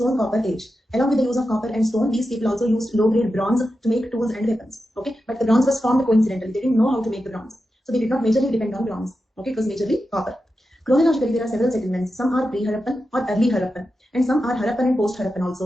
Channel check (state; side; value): normal; both; correlation 0.90